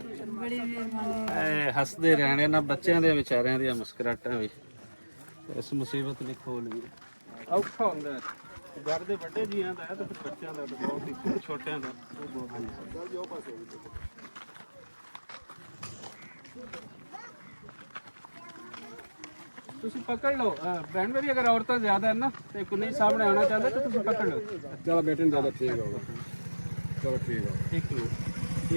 ਹੱਸਦੇ ਰਹਿਣੇ ਨਾ, ਬੱਚਿਆਂ ਦੇ ਵਿਚਾਰਿਆਂ ਦੀਆਂ ਮੁਸਕਰਾਹਟਾਂ ਵੀ ਇਸ ਮੁਸੀਬਤ ਨੇ ਖੋਲ ਲਈ। ਔਖਾ ਹੁੰਦਾ ਹੈ, ਘਰ ਦੇ ਵੱਡੇ ਜੀਆਂ ਦਾ ਹੈ ਤੇ ਫਿਰ ਬੱਚਿਆਂ ਦਾ ਤਾਂ ਬਹੁਤ ਹੀ, ਛੋਟਿਆਂ ਦਾ ਉਹ ਬਹੁਤ ਹੁੰਦਾ। ਤੁਸੀਂ ਪਕੜ ਲਓ ਭੈਣ ਮੇਰੀ, ਅਗਰ ਔਰਤਾਂ ਜ਼ਿਆਦਾ ਹੈ ਨਾ ਤੇ ਕੋਈ ਸਾਹਮਣੇ ਆਉਣਾ ਚਾਹੁੰਦਾ ਤਾਂ ਤੁਸੀਂ ਪਕੜ ਲਓ। ਚਲੋ ਬੇਟੇ ਨੂੰ ਜ਼ਿਆਦਾ ਠੀਕ ਹੋਗਾ। ਚਲੋ ਠੀਕ ਹੈ। ਇੱਕ ਮਿੰਟ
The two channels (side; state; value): both; inverted; correlation -1.00